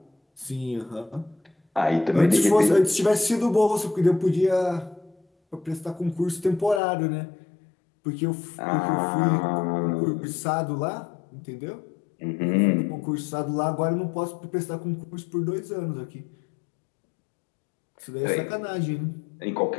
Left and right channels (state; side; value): drops out; right; at 6.8 s